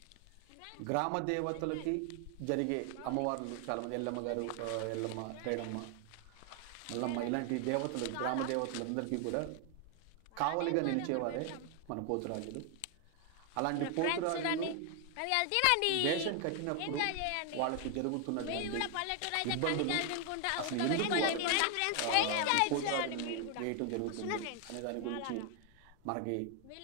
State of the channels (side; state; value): both; different; correlation 0.01